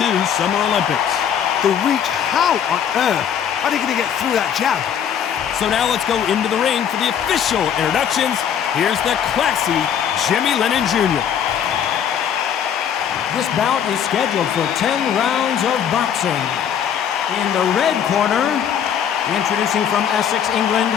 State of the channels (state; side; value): quieter; right; 8.6 dB